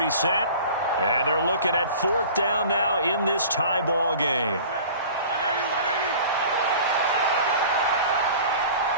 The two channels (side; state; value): both; inverted; correlation -0.43